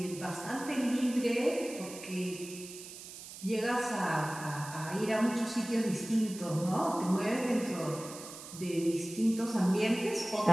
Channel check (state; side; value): noise; right; hiss, 13 dB below the sound